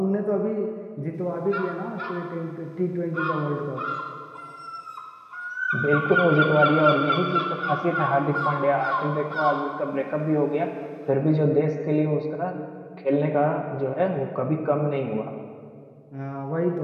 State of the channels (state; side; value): identical; both; correlation 1.00